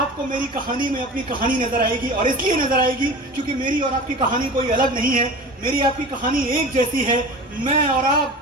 मेरी कहानी में अपनी कहानी नजर आएगी, और इसलिए नजर आएगी क्योंकि मेरी और आपकी कहानी कोई अलग नहीं है। मेरी आपकी कहानी एक जैसी है। मैं और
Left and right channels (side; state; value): both; normal; correlation 0.36